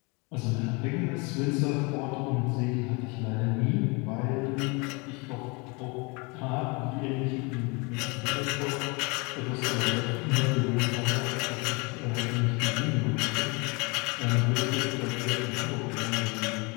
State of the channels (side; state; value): right; quieter; 29.2 dB